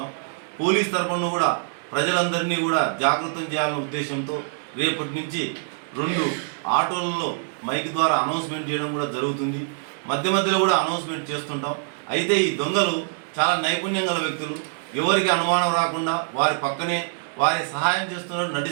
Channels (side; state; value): left; silent; digital silence